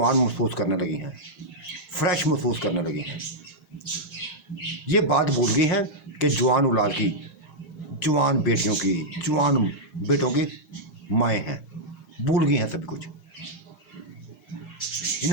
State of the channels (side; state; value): right; late; 6.4 ms